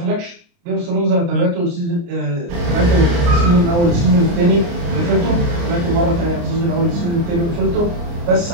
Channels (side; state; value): left; late; 29 ms